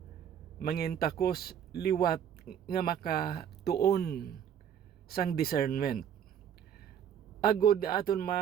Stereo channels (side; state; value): left; quieter; 9.0 dB